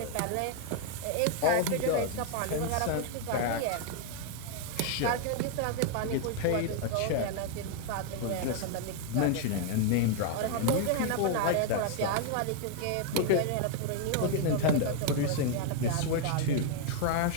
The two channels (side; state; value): both; different; correlation 0.00